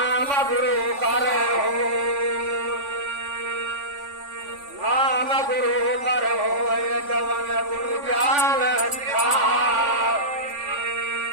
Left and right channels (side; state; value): left; late; 3.5 ms